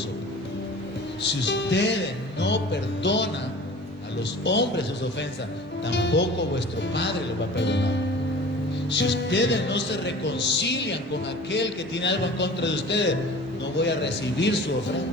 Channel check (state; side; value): normal; both; correlation 0.42